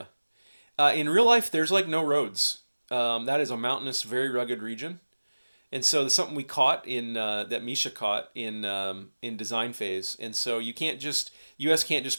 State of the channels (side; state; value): both; inverted; correlation -1.00